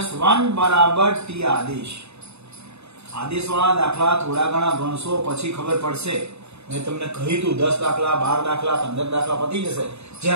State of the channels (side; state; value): left; late; 0.80 ms